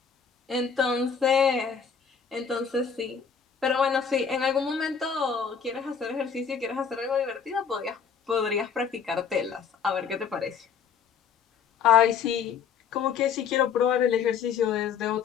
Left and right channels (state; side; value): quieter; right; 6.8 dB